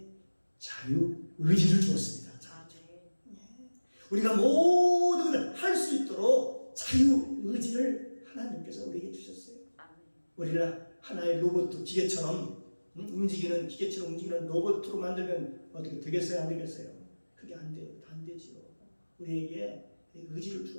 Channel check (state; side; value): inverted; both; correlation -1.00